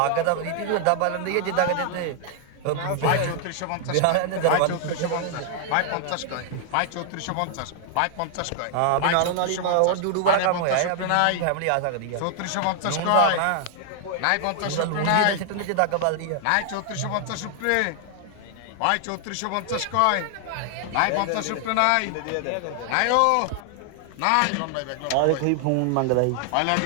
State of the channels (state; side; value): different; both; correlation 0.00